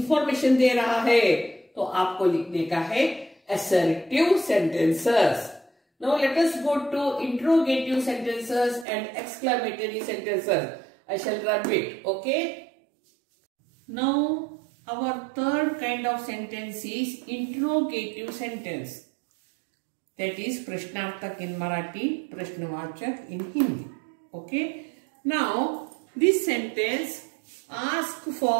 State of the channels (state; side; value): drops out; left; at 8.8 s